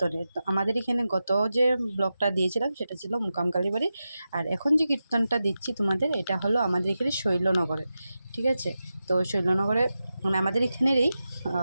তো আমাদের এখানে গত যে ব্লগটা দিয়েছিলাম সেটা ছিল মুকাম কালীবাড়ি, আর এখন যে কীর্তনটা দিচ্ছি তোমাদের এটা হলো আমাদের এখানে শৈলনগরে। ঠিক আছে, তো শৈলনগরে মানে আমাদের এখানেরই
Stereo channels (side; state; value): both; inverted; correlation -0.92